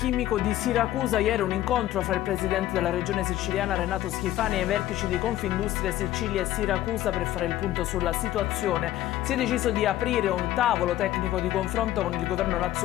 di Siracusa. Ieri un incontro fra il presidente della regione siciliana Renato Schifani e i vertici di Confindustria Sicilia e Siracusa per fare il punto sulla situazione. Si è deciso di aprire un tavolo tecnico di confronto con il governo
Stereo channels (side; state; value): right; quieter; 14.1 dB